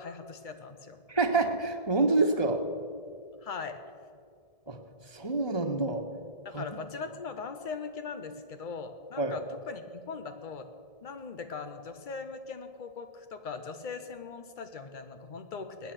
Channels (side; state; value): right; late; 1.7 ms